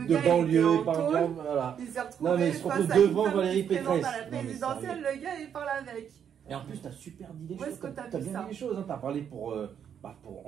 de gars, banlieue, il il parle de... Voilà. Il s'est retrouvé Non, mais il se retrouve face à une devant femme Valérie qui se présente Pécresse. à la Non, mais présidentielle, le gars, il parle avec. Et en plus, t'as super dit les Où choses. est-ce que t'as T'as vu bien ça dit les choses. Hein. T'as parlé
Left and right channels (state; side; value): quieter; left; 8.4 dB